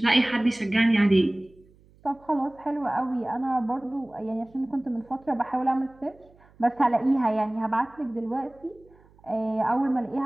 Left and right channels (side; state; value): right; noise; hum, 29 dB below the sound